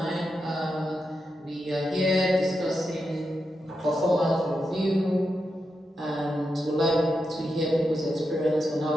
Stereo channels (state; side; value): normal; both; correlation 0.87